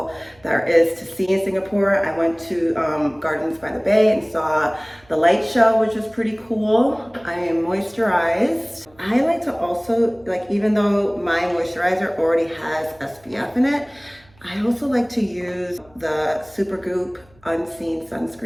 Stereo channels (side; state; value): right; noise; hum, 30 dB below the sound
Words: there is to see in Singapore. I went to Gardens by the Bay and saw the light show, which was pretty cool. I am moisturized. I like to also, like, even though my moisturizer already has SPF in it, I also like to use the Supergoop Unseen